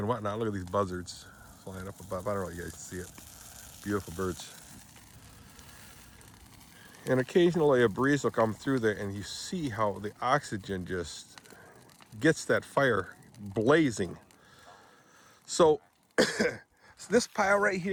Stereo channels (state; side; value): identical; both; correlation 1.00